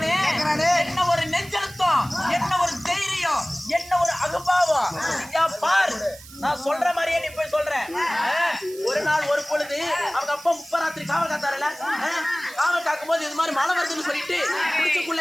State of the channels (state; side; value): noise; right; hiss, 19 dB below the sound